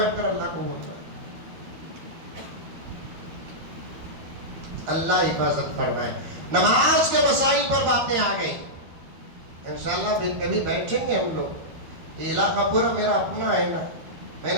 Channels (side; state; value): left; late; 12 ms